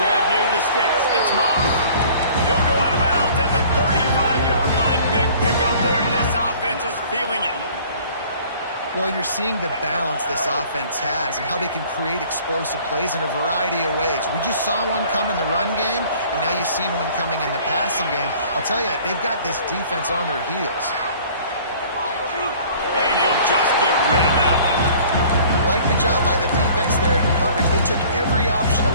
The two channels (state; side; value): inverted; both; correlation -0.51